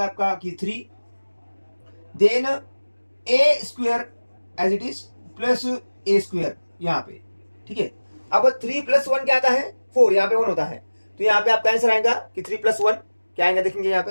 आपका कि 3, then a square as it is plus a square यहाँ पे, ठीक है। अब 3 + 1 क्या आता है 4, यहाँ पे 1 होता है, तो यहाँ पे आपका आंसर आएगा कि 3 + 1 क्या आएगा, देखेंगे यहाँ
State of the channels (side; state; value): both; inverted; correlation -1.00